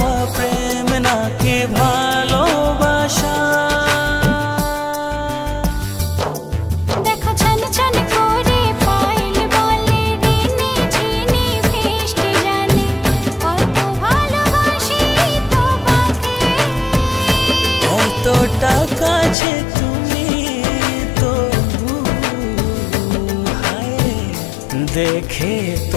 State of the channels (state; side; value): drops out; right; at 19.4 s